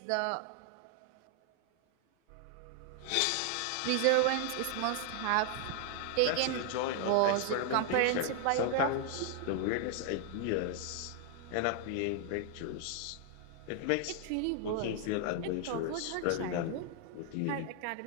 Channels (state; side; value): different; both; correlation 0.00